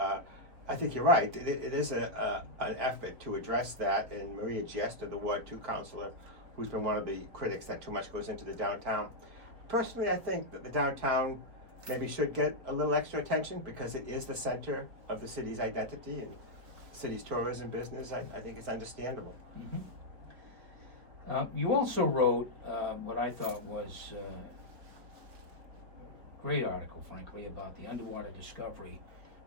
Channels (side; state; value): left; late; 4.2 ms